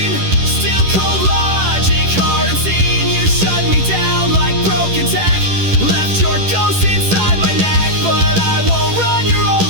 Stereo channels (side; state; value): left; late; 11 ms